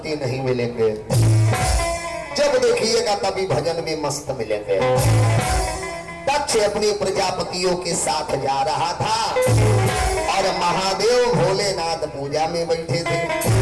नहीं मिलेंगे, जब देखिएगा तभी भजन में मस्त मिलेंगे। दक्ष अपने प्रजापतियों के साथ जा रहा था और महादेव भोलेनाथ पूजा में बैठे थे।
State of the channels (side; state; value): both; identical; correlation 1.00